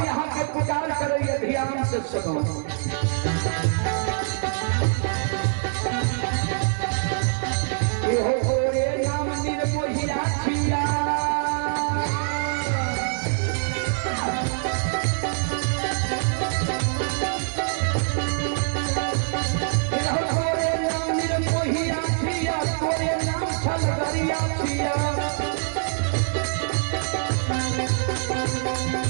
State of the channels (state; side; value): silent; left; digital silence